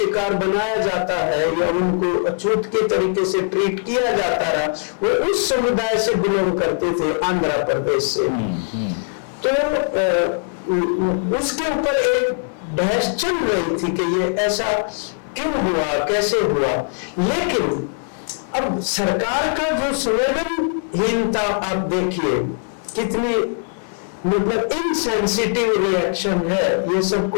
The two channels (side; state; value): right; silent; 65 dB below the other